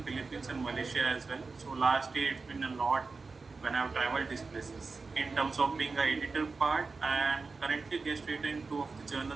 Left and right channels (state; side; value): quieter; left; 4.2 dB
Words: Philippines and Malaysia as well. So last year it's been a lot when I've traveled these places. In terms of being an editor part, I am currently guest editor in 2 of the